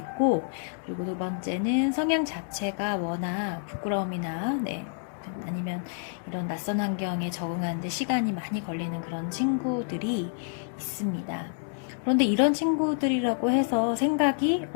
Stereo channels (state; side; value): silent; right; digital silence